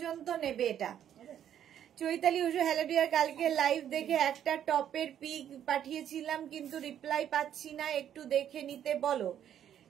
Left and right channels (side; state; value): left; quieter; 10.0 dB